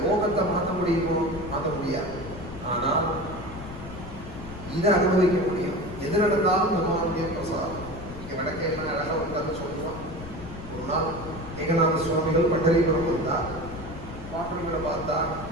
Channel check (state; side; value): noise; left; rumble, 12 dB below the sound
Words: லோகத்தை மாற்ற முடியுமோ மாற்ற முடியாது. ஆனால் இதை அனுபவிக்க முடியும். எது நடந்தாலும் பகவானுடைய பிரசாதம். இங்க நடக்க என்ன அழகா உட்கார்ந்து சொல்லுவான். ஒரு நாள் ஏகநாத சுவாமிகள் பண்டரிபுரம் வந்தார். பாட்டுகளை பார்த்தா